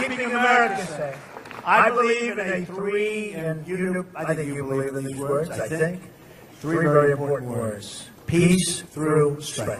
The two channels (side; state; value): both; identical; correlation 1.00